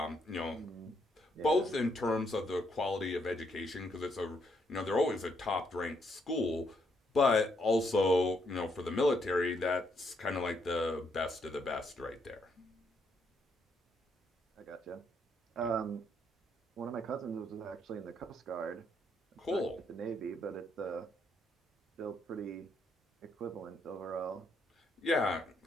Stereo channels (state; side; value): normal; both; correlation 0.74